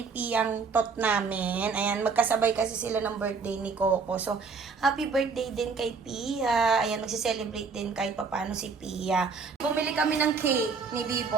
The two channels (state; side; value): quieter; left; 5.0 dB